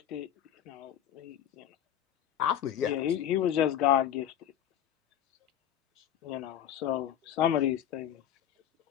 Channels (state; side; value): quieter; right; 10.4 dB